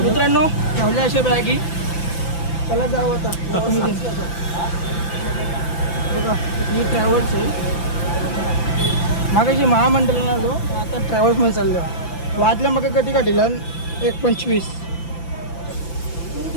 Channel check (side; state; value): right; late; 5.9 ms